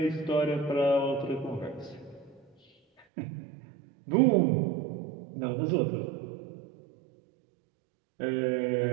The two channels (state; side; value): drops out; left; at 3.1 s